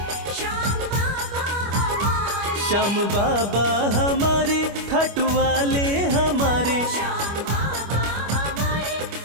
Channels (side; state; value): left; late; 25 ms